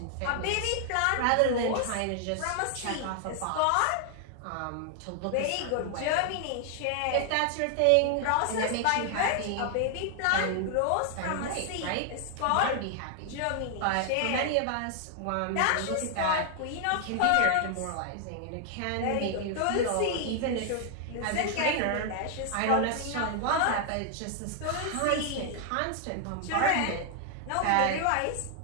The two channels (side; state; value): both; different; correlation 0.00